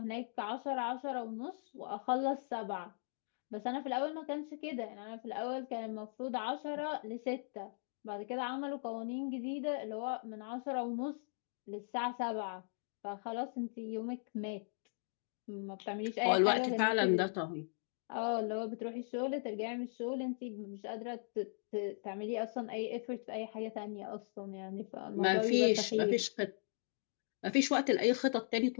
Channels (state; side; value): silent; right; digital silence